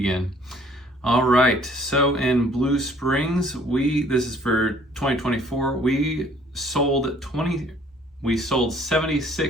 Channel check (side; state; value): both; normal; correlation 0.58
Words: All right, so in Blue Springs, this is for 2024, we sold